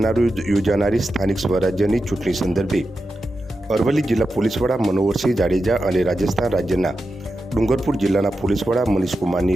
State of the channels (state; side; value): normal; both; correlation 0.90